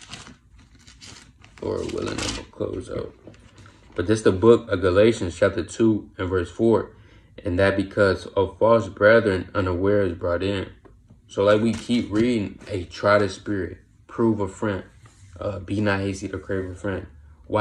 Lord willing, I'm going to close out. But this is the book of Galatians, chapter 2 and verse 4. And that because of false brethren unaware is brought in. So like we keep reading, try the spirit, prove a friend, be not hasty to crave a friend.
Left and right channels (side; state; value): both; identical; correlation 1.00